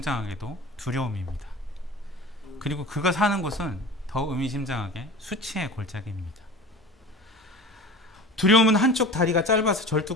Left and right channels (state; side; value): normal; both; correlation 0.37